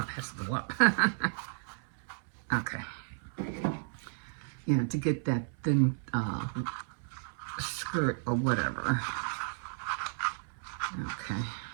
it has to go up. Okay. You know, to get that thin skirt or whatever. Okay.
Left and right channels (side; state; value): left; silent; 56 dB below the other